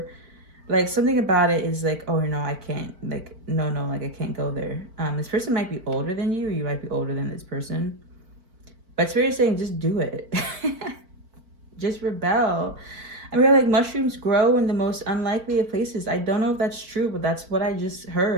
like something about it is like, oh no, I can't, like, no, like I can't go there. This person might be older than you, or you might be older than this person, but Spirit is saying just do it. Just rebel. I mean, like, mushrooms grow in the most unlikely of places. I don't know if that's true, but that's what I just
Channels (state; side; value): late; left; 4.5 ms